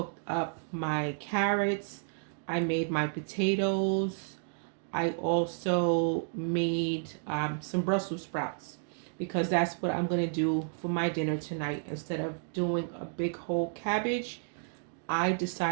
up my carrots, I made my potatoes. I also made some Brussels sprouts because that's what I'm going to do for my dinner tonight. Instead of doing a big whole cabbage, I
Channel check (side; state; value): left; silent; digital silence